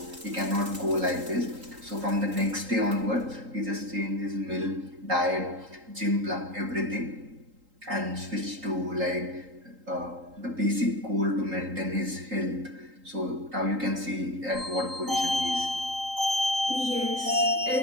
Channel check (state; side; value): late; left; 3.8 ms